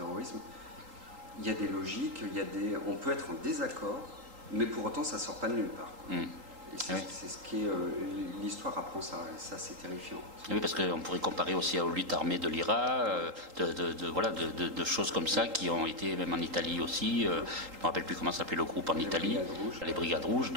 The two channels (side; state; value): left; late; 3.8 ms